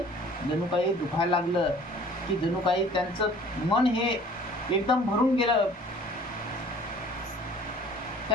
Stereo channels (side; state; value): both; normal; correlation 0.50